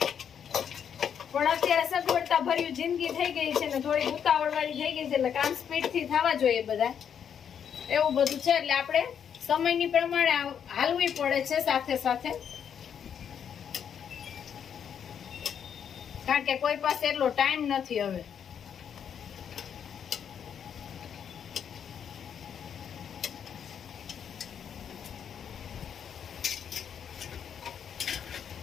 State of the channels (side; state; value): right; quieter; 8.1 dB